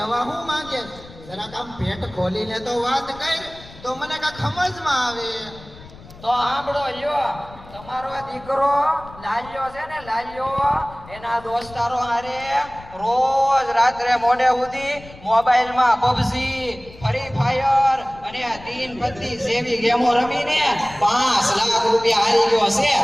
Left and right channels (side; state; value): left; noise; rumble, 19 dB below the sound